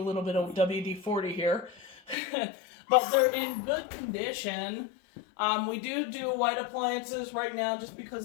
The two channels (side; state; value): right; drops out; at 2.1 s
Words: little bit of WD-40 here. But they're in good condition. We do white appliances right now just